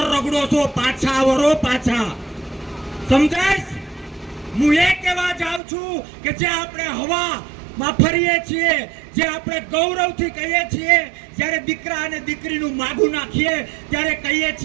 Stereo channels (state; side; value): drops out; left; at 5.6 s